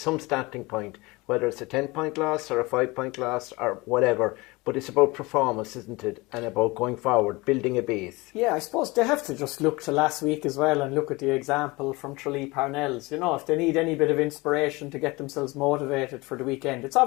starting point, whether it's a 10-point loss or a 5-point loss or whatever. But it's about performance, isn't it? And about going forward, building a base. Yeah, I suppose they have to just look to last week as well and look at the example from Tralee Parnell's. If they need any bit of inspiration to get themselves motivated for the weekend, it's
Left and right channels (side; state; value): right; quieter; 23.5 dB